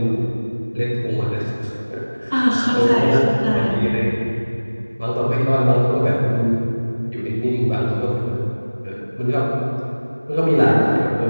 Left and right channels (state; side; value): inverted; both; correlation -1.00